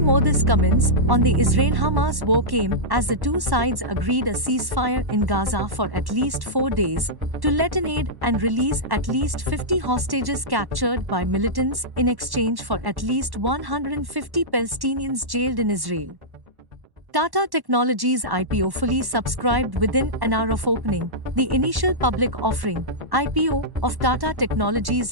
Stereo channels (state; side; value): late; left; 1.1 ms